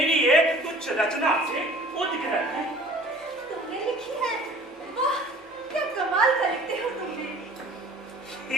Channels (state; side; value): normal; both; correlation 0.49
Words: एक तुच्छ रचना से उद्ग्रह है। तुमने लिखी है? वाह, क्या कमाल का लिखते हो तुमने।